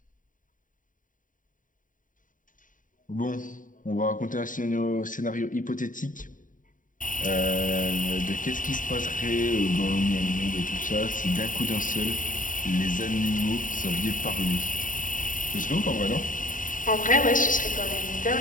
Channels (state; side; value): late; right; 0.38 ms